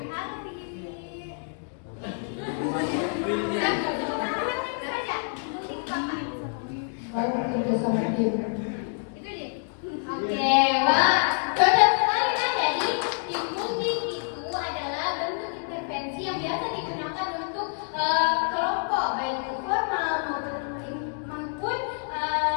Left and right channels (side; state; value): right; silent; 60 dB below the other